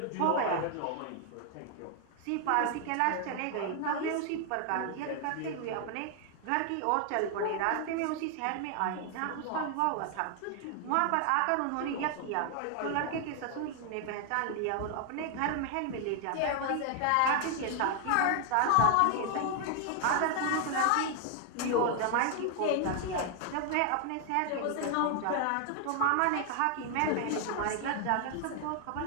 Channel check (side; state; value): both; different; correlation 0.00